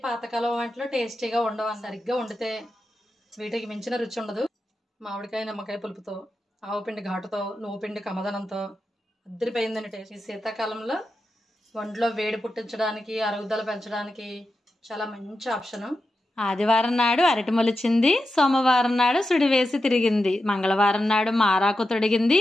పాతకాలం వంటలు టేస్టీగా ఉండవు. సరిగ్గా వండితే వీటికి మించిన రుచి ఉండదు. మామిడికాయ నిమ్మకాయ పులుపుతో, ఆవుపిండి ఘాటుతో, నువ్వు పిండి కమదనంతో అద్దరిపోయిందండి టేస్ట్. ఈ శీతాకాలంలో ఒంట్లో వేడి పుట్టించడానికి, అరుగుదల పెంచడానికి చాలా మంచి ఆప్షను. ఆదివారం నాడు అరటి మొలిచింది, సోమవారం నాడు సుడి వేసి తిరిగింది, మంగళవారం నాడు మారాకు తొడిగింది,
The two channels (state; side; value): normal; both; correlation 0.90